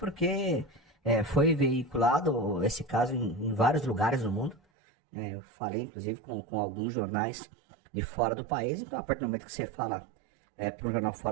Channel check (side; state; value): left; drops out; at 4.6 s